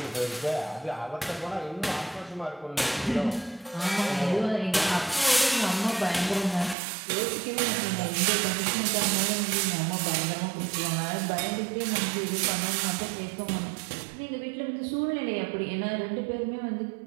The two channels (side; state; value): left; drops out; at 6.8 s